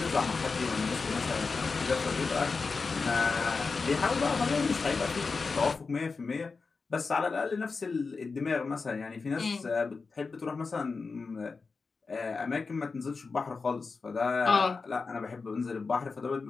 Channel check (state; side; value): quieter; right; 4.5 dB